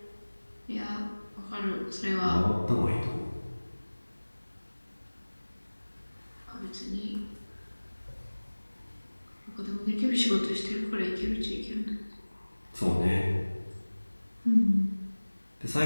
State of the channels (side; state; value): both; inverted; correlation -1.00